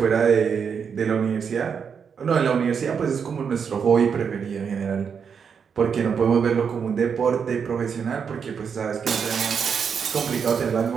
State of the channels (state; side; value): quieter; left; 6.7 dB